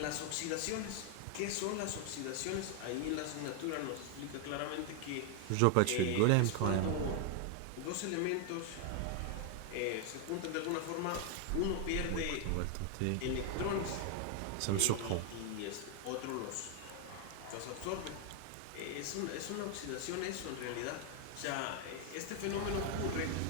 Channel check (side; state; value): both; different; correlation 0.00